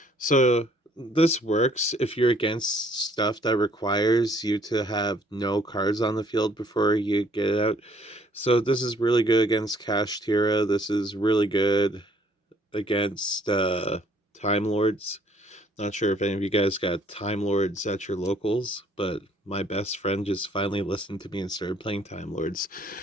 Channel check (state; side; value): normal; both; correlation 0.62